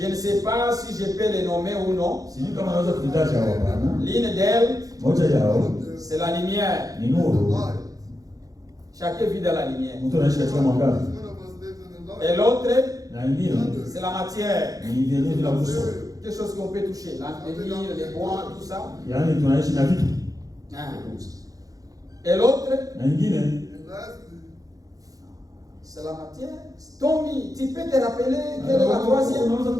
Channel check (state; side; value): late; left; 0.17 ms